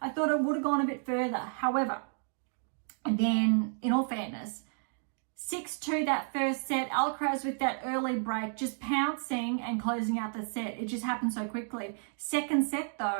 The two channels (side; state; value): left; silent; 57 dB below the other